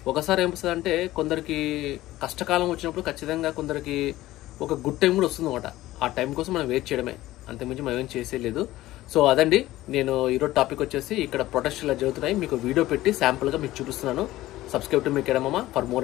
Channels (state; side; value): quieter; right; 16.3 dB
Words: ఒకసారి ఏమొస్తుంది అంటే, కొందరికి కష్టకాలం వచ్చినప్పుడు ఖచ్చితంగా కొందరికి ఒక గుడ్ టైం కూడా వస్తుంది అనమాట. ఆ టైం కోసం మనం వెయిట్ చేయడమే, అంతకుమించి మనం ఏం చేసేయలేదు. సో అదండి, నేను ఈరోజు టాపిక్ వచ్చేసి ఇక్కడ ప్రొటెస్ట్ ఇలా జరుగుతున్నాయి, మీకు వీడియో పెట్టి శాంపుల్గా మీకు చూపిస్తున్నాను. Subscribe to me academy for